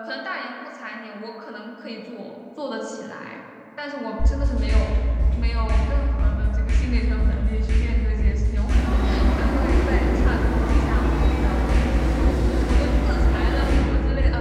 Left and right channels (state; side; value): identical; both; correlation 1.00